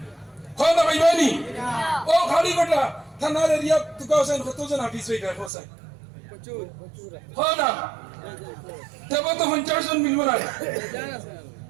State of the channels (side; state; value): left; drops out; at 5.5 s